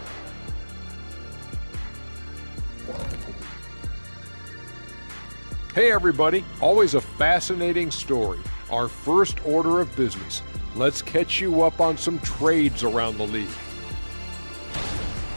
Hey everybody, always a fascinating story. Our first order of business. Let's catch you up on some trades around the league.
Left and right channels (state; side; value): inverted; both; correlation -1.00